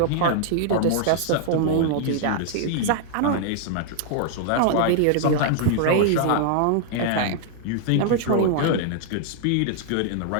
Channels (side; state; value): both; different; correlation -0.01